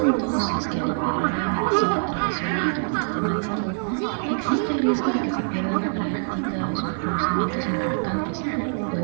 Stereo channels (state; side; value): silent; left; 62 dB below the other